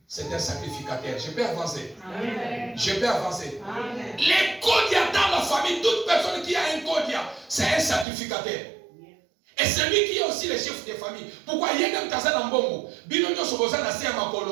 C'est un sacrificateur. Je peux avancer. Amen. Je peux avancer. L'encodia dans la famille, toute personne qui a un encodia, c'est un sacrificateur. Et c'est lui qui est aussi le chef de famille. Pourquoi il y a un taza dans Bongo? Bino nyoso boza na se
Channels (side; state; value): left; drops out; at 8.1 s